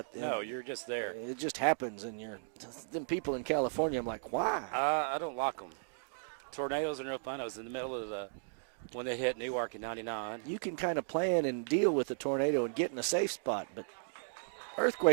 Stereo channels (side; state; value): left; silent; digital silence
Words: it. No, you're just there. It just happens, and them people in California, I'm like, why? I don't like them. Tornadoes are no fun. I was in the middle of when they hit Newark in 99. You can kind of plan and deal with the tornado and get in a safe spot, but